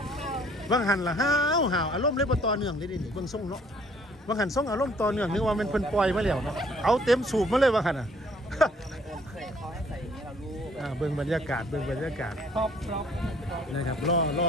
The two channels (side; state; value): both; normal; correlation 0.60